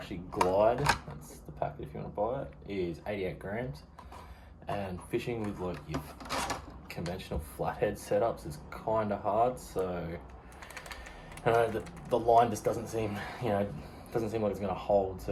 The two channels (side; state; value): both; identical; correlation 1.00